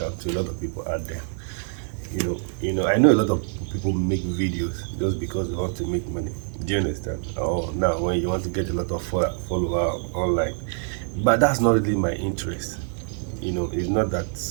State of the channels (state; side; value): silent; left; digital silence